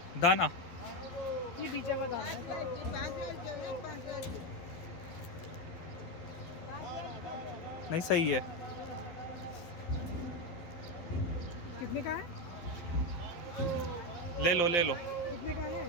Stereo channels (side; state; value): right; late; 11 ms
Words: दाना? ये बीजा का दाना है। नहीं सही है। कितने का है? ले लो ले लो, कितने का